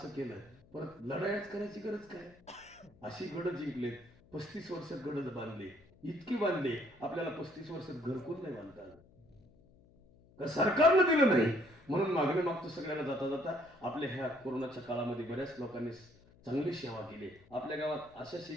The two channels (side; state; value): left; noise; hum, 27 dB below the sound